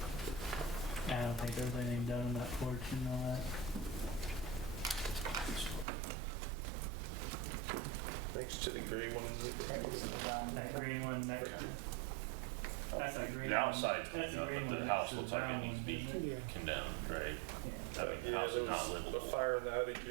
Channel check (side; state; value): left; drops out; at 5.9 s